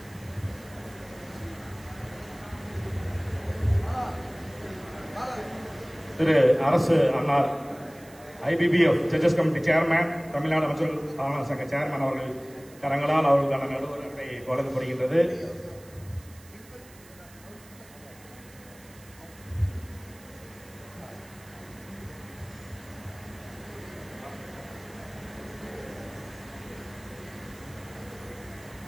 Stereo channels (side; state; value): right; noise; hiss, 23 dB below the sound